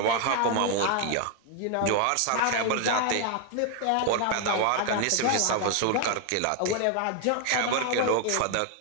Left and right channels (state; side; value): different; both; correlation 0.00